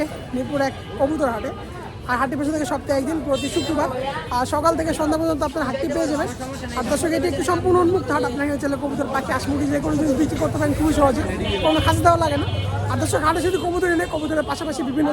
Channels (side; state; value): both; identical; correlation 1.00